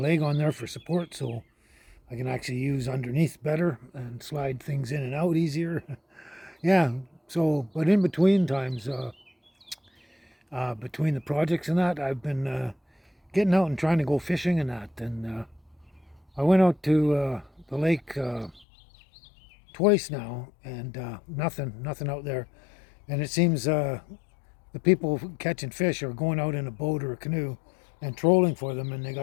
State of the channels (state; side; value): drops out; right; at 18.7 s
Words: on there for support so I can actually use underneath better and slide things in and out easier. Yeah, so, but in between times, between the projects and that, I've been getting out and trying to go fishing and that. And I went out to the lake twice now, and nothing out there. And it seems the people catching fish are going out in a boat or a canoe and trolling for them, and they